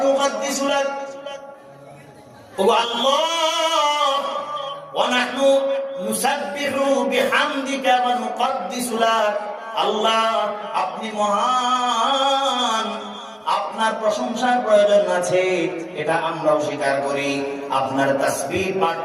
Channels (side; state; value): both; identical; correlation 1.00